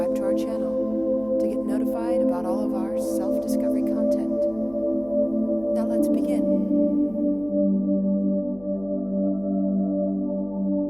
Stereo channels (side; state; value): left; noise; hum, 22 dB below the sound